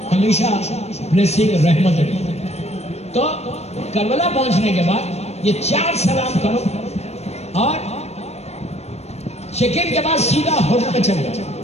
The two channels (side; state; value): right; late; 0.31 ms